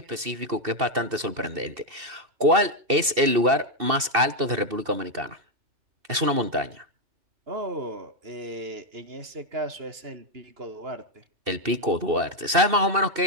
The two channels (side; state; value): left; late; 2.7 ms